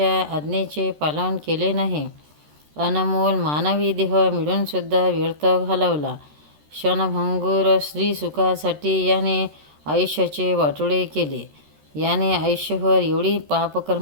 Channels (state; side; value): late; left; 13 ms